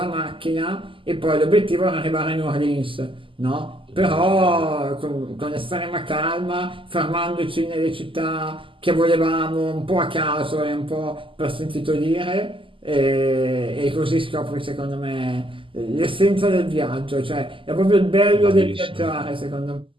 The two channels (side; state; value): left; late; 0.25 ms